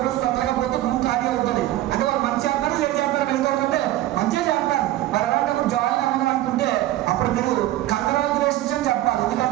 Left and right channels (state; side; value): quieter; left; 14.9 dB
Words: తొందరగా పోతే భూమి ఖాళీ అవుతుంది. అంటే వాళ్ళు మంచి చేస్తారు, చెడు చేస్తారు, వెళ్తారంటే మంచిగా చేస్తారు. మరి అలాంటప్పుడు జాయిన్ అవ్వడం అనుకుంటే అప్పుడు మీరు కంగ్రాచులేషన్స్ అని చెప్పాలి.